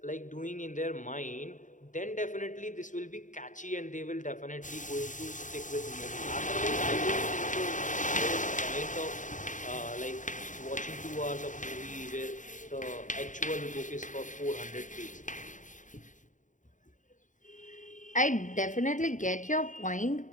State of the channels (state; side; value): late; right; 0.37 ms